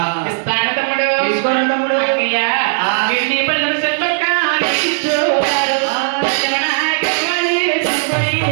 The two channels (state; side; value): silent; left; digital silence